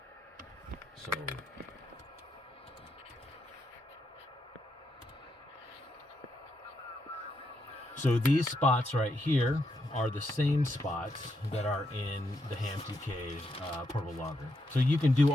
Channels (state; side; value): normal; both; correlation 0.80